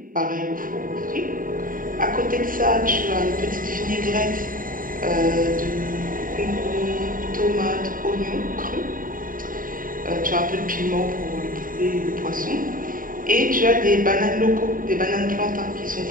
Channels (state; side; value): late; left; 0.40 ms